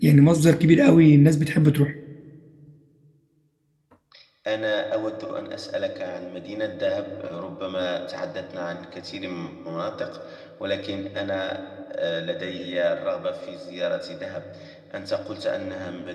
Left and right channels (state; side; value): identical; both; correlation 1.00